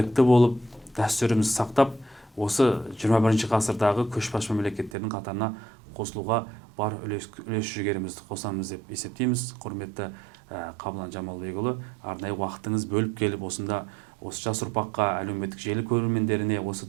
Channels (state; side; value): drops out; left; at 4.9 s